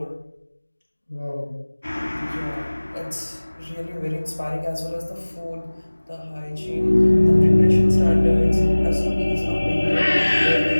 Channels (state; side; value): inverted; both; correlation -1.00